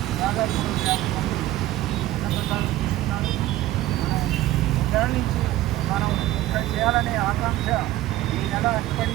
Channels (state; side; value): quieter; left; 15.4 dB